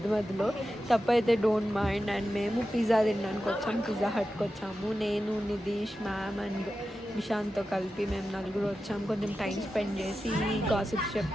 తప్పైతే డోంట్ మైండ్. అండ్ మేము పిజ్జా తినడానికి వచ్చాము, పిజ్జా హట్కి వచ్చాము. నేను, నిధీష్, మ్యామ్ అండ్ విశాంత్తో కలిపి మేము నలుగురు వచ్చాము. కొంచెం టైం స్పెండ్ చేసి గాసిప్స్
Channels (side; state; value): both; normal; correlation 0.92